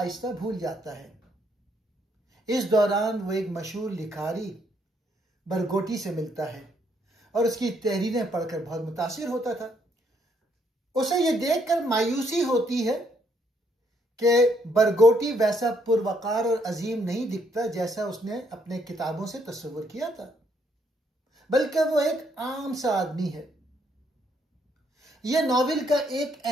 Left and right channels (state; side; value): normal; both; correlation 0.71